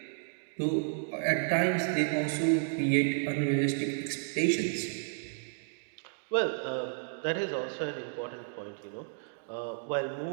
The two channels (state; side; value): silent; left; digital silence